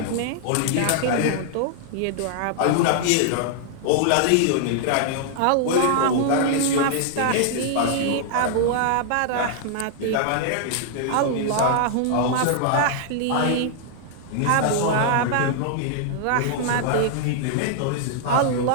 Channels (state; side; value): different; both; correlation -0.01